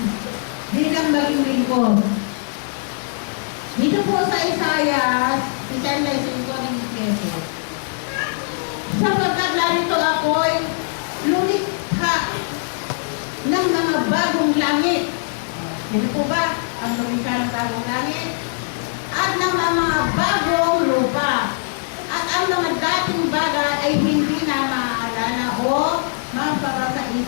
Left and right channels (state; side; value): silent; right; digital silence